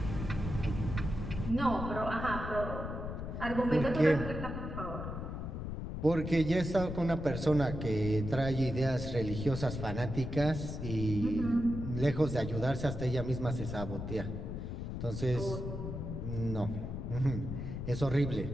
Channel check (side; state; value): left; noise; rumble, 5 dB below the sound